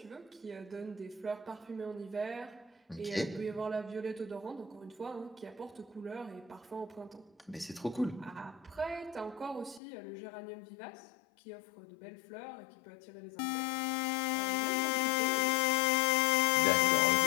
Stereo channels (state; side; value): drops out; right; at 9.8 s